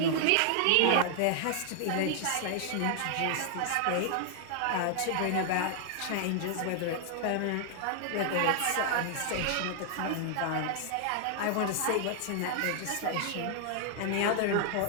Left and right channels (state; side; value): different; both; correlation 0.00